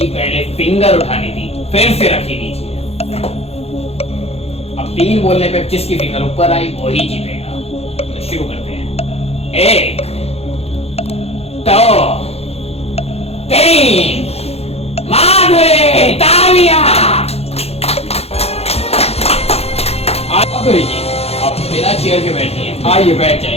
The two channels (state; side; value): late; right; 0.29 ms